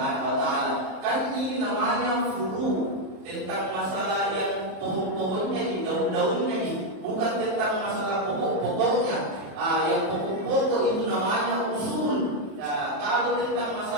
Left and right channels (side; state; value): left; late; 27 ms